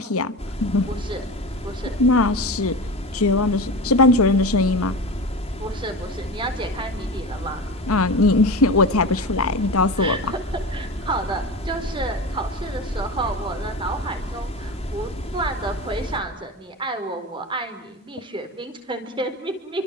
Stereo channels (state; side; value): normal; both; correlation 0.28